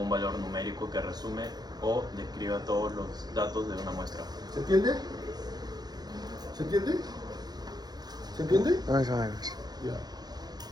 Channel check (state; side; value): late; left; 0.19 ms